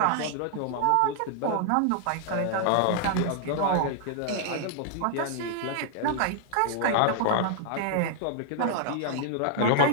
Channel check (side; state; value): both; different; correlation 0.00